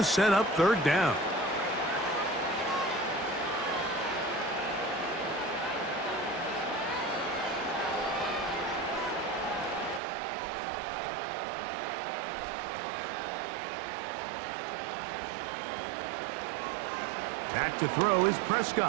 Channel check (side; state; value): left; drops out; at 10.0 s